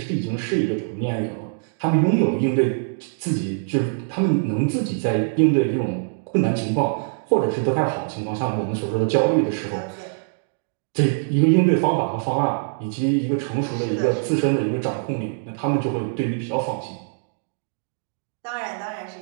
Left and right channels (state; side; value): silent; left; digital silence